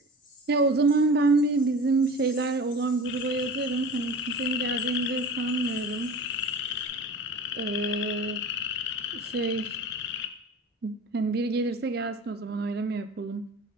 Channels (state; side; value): normal; both; correlation 0.36